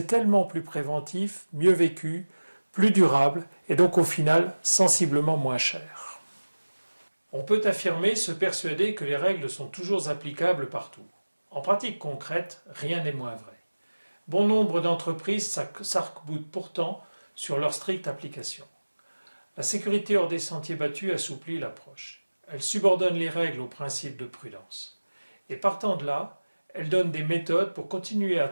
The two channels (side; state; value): both; inverted; correlation -1.00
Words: tellement plus préventif, mieux vécu, plus durable et donc au final sensiblement moins cher. On peut affirmer, se persuader que les règles sont toujours applicables partout. En pratique concrète, rien n'est moins vrai. Bon nombre d'entreprises s'arc-boutent pourtant sur leur stricte application. La sécurité hors des sentiers battus assouplit l'approche. Elle subordonne les règles aux principes de prudence. Et partant de là, elle donne des méthodes pour continuer à